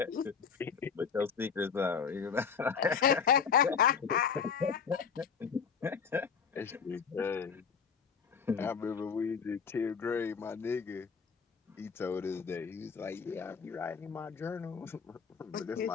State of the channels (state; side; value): quieter; right; 6.4 dB